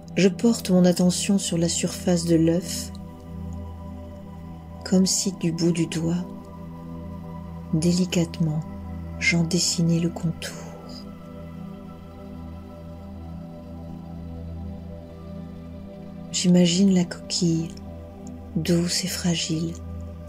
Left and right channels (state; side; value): identical; both; correlation 1.00